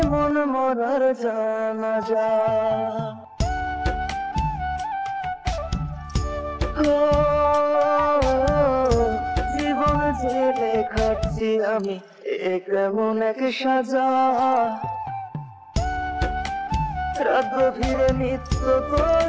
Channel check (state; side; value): identical; both; correlation 1.00